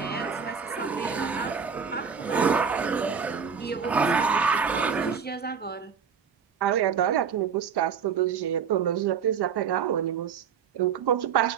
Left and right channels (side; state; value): left; quieter; 6.8 dB